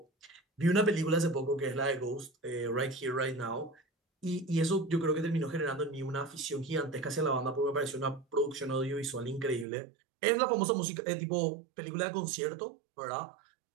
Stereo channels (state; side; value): drops out; left; at 9.7 s